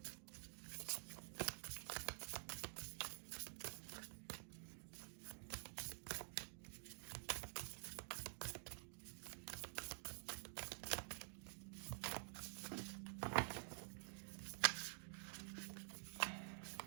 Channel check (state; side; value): silent; left; digital silence